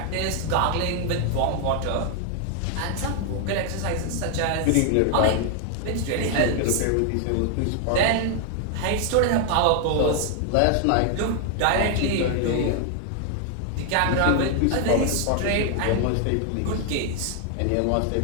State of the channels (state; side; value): different; both; correlation 0.00